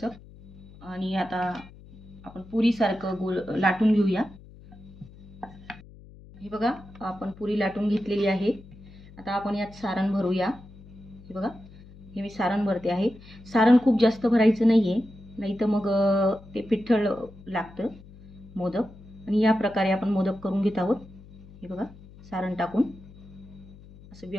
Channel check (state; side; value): noise; left; hum, 20 dB below the sound